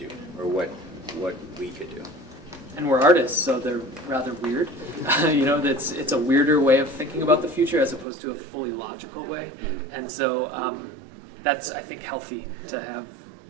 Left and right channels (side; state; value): left; drops out; at 8.1 s